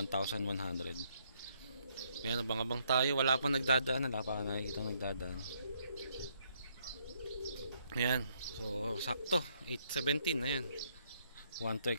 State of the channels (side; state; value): both; inverted; correlation -0.71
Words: Ayan, abang-abang tayo. Wala pang nagdadaan, wala pa nakikita nagdadaan. Ayan, so sakto 8:17 na yan. 1 to